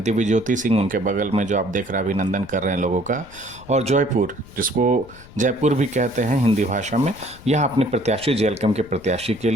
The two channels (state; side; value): noise; left; rumble, 20 dB below the sound